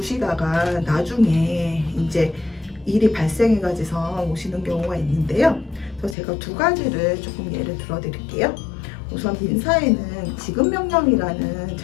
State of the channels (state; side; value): drops out; right; at 6.2 s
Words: 나중에 이제 일이 발생해가지고 오시는 경우가 있는데요. 그래서 제가 두 가지를 조금 예를 들어 드릴게요. 우선 민사에는 지급명령이라는